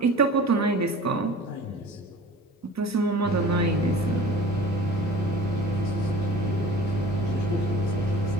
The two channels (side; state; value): both; normal; correlation 0.43